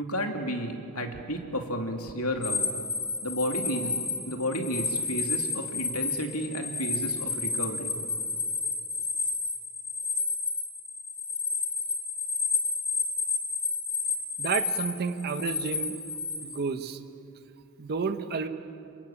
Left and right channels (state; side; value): normal; both; correlation 0.01